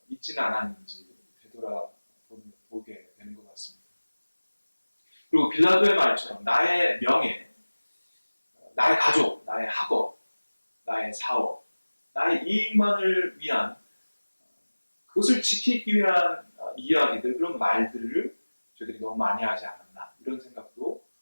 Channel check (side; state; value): both; inverted; correlation -1.00